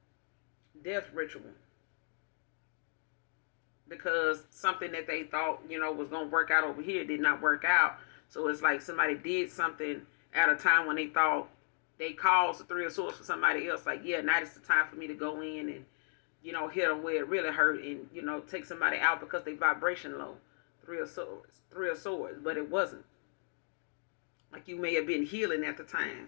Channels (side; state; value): right; silent; 54 dB below the other